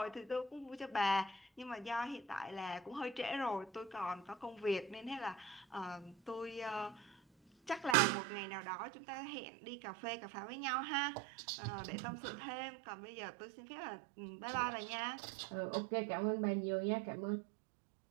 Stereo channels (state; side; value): drops out; left; at 8.0 s